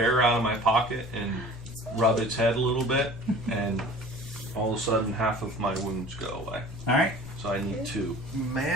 out of my pocket and rub its head a little bit, and all of a sudden half of my wounds go away. All right. So I need 2.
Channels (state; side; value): normal; both; correlation 0.44